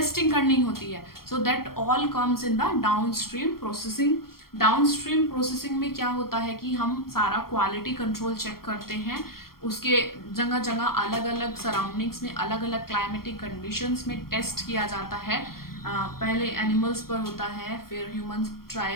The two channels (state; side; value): late; right; 0.93 ms